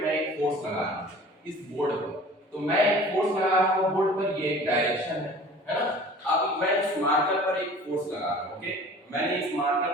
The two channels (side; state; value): both; normal; correlation 0.45